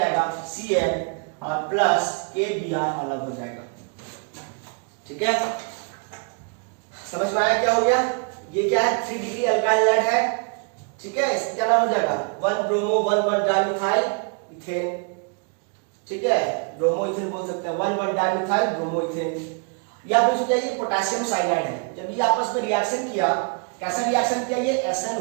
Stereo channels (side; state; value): left; quieter; 37.6 dB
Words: Cn और प्लस KBr अलग हो जाएगा। ठीक है, समझ में आया क्या हो गया? ये क्या है? 3 डिग्री अल्काइल हैलाइड है। ठीक है, इसका क्या नाम हो जाएगा? 1 ब्रोमो 1 डाइमिथाइल इथेन। ठीक है, ब्रोमो इथेन बोल सकते हैं, 1 डाइमिथाइल ब्रोमो इथेन। या फिर क्या ये पोटेशियम साइनाइड है। जब ये आपस में रिएक्शन किया, कैसा रिएक्शन किया? ये